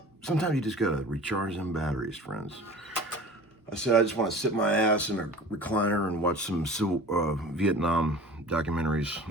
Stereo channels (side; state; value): both; normal; correlation 0.41